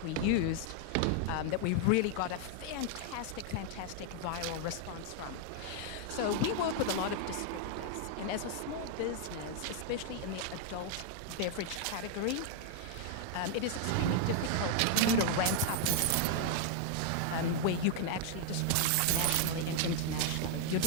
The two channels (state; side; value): different; both; correlation 0.00